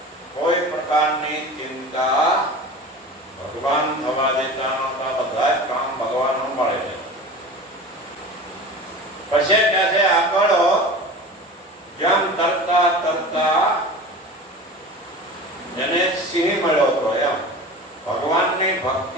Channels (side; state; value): both; normal; correlation 0.35